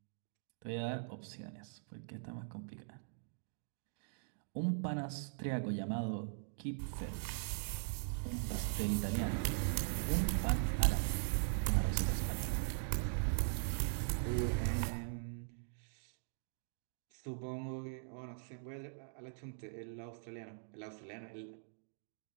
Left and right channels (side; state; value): left; silent; digital silence